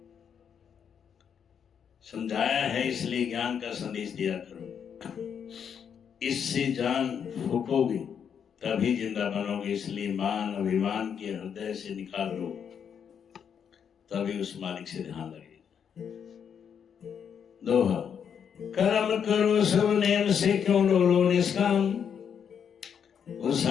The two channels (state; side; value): quieter; right; 7.7 dB